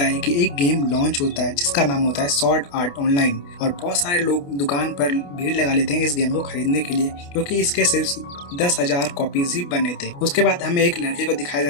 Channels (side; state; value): right; late; 28 ms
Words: है कि एक गेम लॉन्च होता है जिसका नाम होता है स्वॉर्ड आर्ट ऑनलाइन। और बहुत सारे लोग दुकान पर भीड़ लगा लेते हैं इस गेम को खरीदने के लिए, क्योंकि इसके सिर्फ 10,000 कॉपीज ही बने थे। उसके बाद हमें एक लड़के को दिखाया